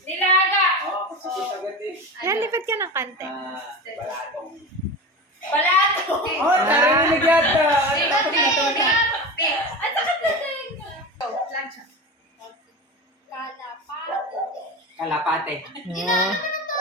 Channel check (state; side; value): normal; both; correlation 0.27